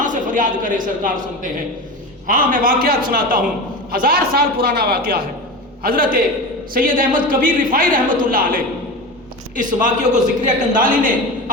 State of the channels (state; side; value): normal; both; correlation 0.27